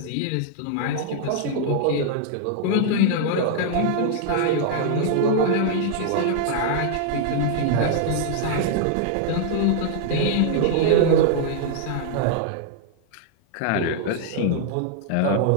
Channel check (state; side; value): different; both; correlation -0.01